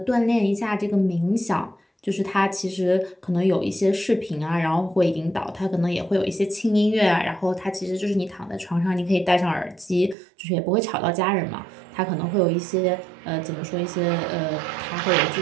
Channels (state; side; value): drops out; left; at 10.2 s